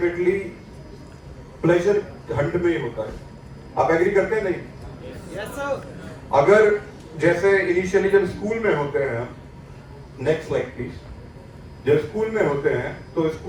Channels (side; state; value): both; identical; correlation 1.00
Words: प्लेजर हंट में ही होता है। आप एग्री करते हैं? नहीं? Yes sir. अगर जैसे इनिशियली जब स्कूल में होते हैं, नेक्स्ट स्लाइड प्लीज। जब स्कूल में होते हैं तो